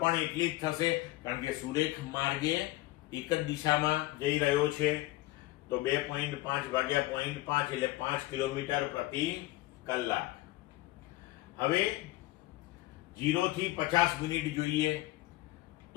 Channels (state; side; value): quieter; right; 18.4 dB